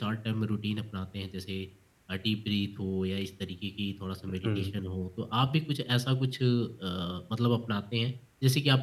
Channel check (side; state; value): both; identical; correlation 1.00